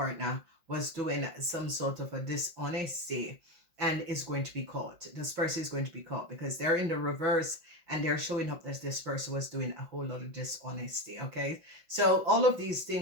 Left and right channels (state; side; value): late; left; 5.7 ms